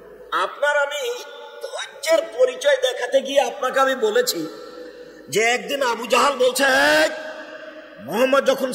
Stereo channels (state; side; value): identical; both; correlation 1.00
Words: আপনার আমি ধৈর্যের পরিচয় দেখাতে গিয়ে আপনাকে আমি বলেছি যে একদিন আবু জাহাল বলছে, মোহাম্মদ যখন